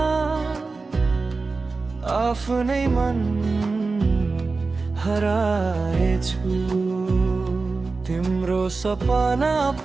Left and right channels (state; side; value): quieter; left; 4.0 dB